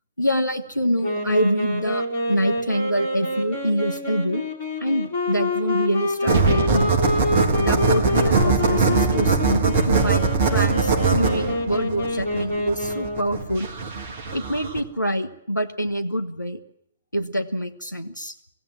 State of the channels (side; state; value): both; inverted; correlation -0.62